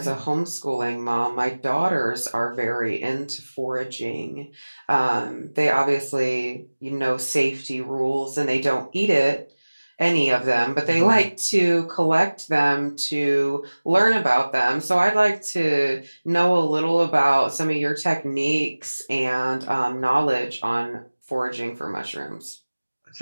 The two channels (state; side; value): inverted; both; correlation -1.00